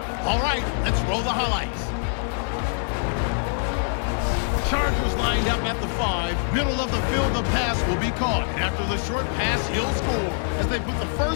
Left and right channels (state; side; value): silent; right; digital silence